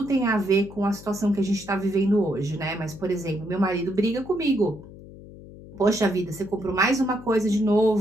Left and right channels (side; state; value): left; noise; hum, 17 dB below the sound